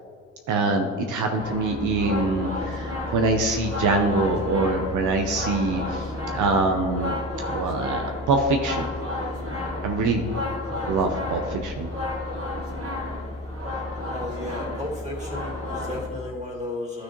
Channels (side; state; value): both; normal; correlation 0.25